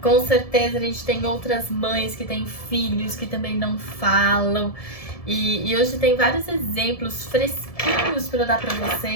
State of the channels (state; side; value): late; right; 1.7 ms